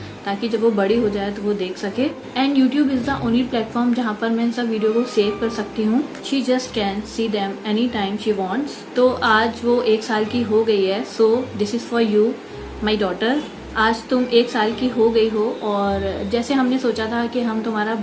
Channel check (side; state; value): both; identical; correlation 1.00